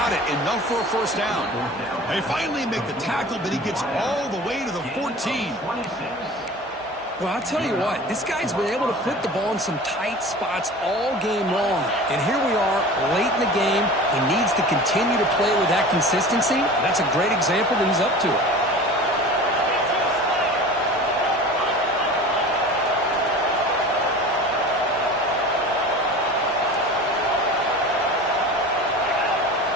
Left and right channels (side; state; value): both; normal; correlation 0.38